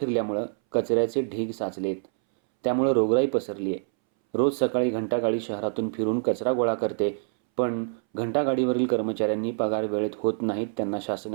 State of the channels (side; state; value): left; silent; 61 dB below the other